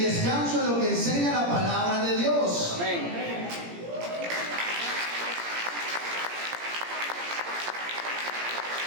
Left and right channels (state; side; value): late; left; 17 ms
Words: en lo que enseña la palabra de Dios. Amén.